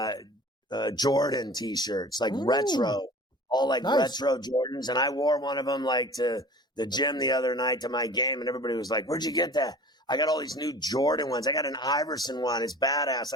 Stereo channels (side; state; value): both; normal; correlation 0.42